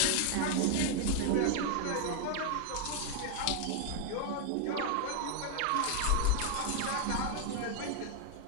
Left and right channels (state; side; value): different; both; correlation 0.01